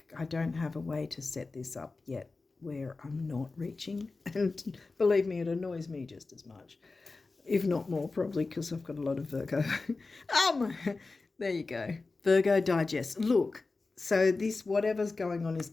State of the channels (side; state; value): right; quieter; 3.7 dB